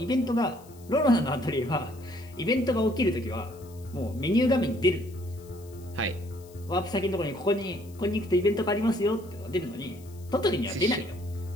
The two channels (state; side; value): noise; left; hiss, 25 dB below the sound